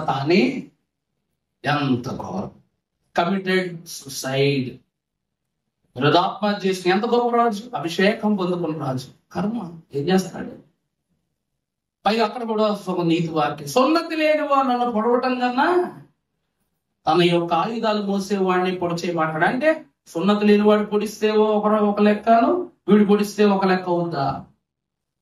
తానే ఎంత ఘోరం! Committed suicide. హృదాత్మహత్య చేసిన ఎంత గొప్ప రాజు, అభిషేకం పొందుకున్న రాజు. కర్మ ఏం చేస్తాడు? పైగా అక్కడ కూడా ఒక నీతి వాక్యం, సున్నతి లేని వాడు నన్ను పొడవటం కన్నా తన యొక్క ఆయుధాలు మోసేవాడిని పొడిచేయమంటాడు. అంటే సున్నతి లేని వాడు పొడిస్తే ఒక లెక్కను, వీడు పొడిస్తే ఒక లెక్క ఉందా?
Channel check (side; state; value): both; identical; correlation 1.00